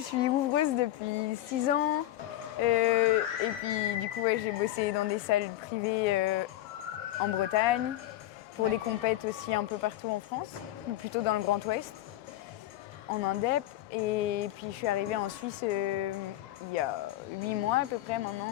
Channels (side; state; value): right; quieter; 14.4 dB